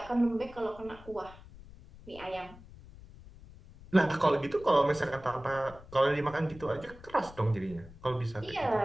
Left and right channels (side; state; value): left; noise; rumble, 19 dB below the sound